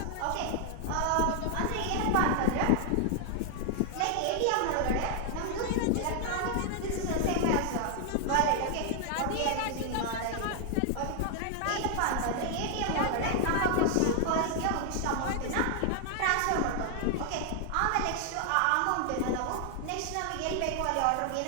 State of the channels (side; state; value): both; different; correlation 0.00